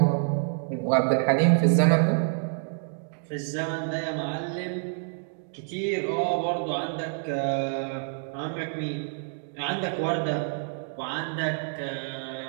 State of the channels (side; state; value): left; silent; digital silence